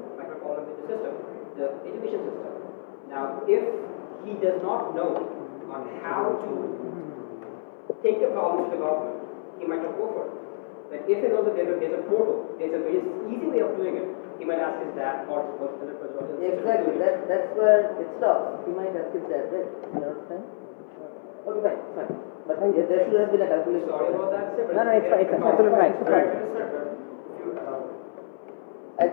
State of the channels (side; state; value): right; silent; 58 dB below the other